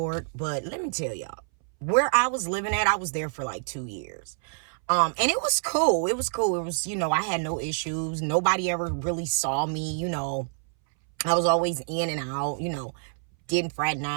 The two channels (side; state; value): left; silent; 60 dB below the other